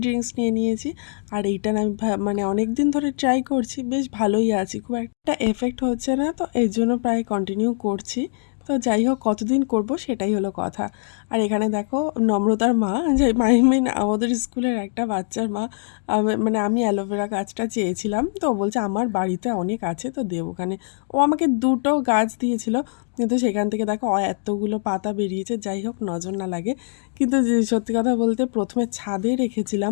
ড্রিঙ্কস নিয়ে নিয়েছি। আর এইটা আমি মানে অনেক দিন ধরে ট্রাই করছি, বেশ ভালোই আছি, খুব একটা এফেক্ট হচ্ছে না, তো এর জন্য প্রায় কন্টিনিউ করছি। তো যাই হোক, কতদিন করব সেটাই হলো কথা। আর এখানে দেখো নম্রতার মা, যে মিন আমাদের স্কুলের একটা বাচ্চার মা, মানে আমি অ্যালোভেরা গাছটা চেয়েছিলাম, তো ও বলছে আমার বাড়িতে অনেক আছে তো দেব ওখানে। ও আমাকে 2টো গাছ দিয়েছিল, কিন্তু সেখান থেকে দেখো এতগুলো পাতা বেরিয়েছে। যাই হোক, নজর না লাগে। কিন্তু সত্যি কথা বলতে প্রথমে ছাদে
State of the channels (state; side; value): silent; right; digital silence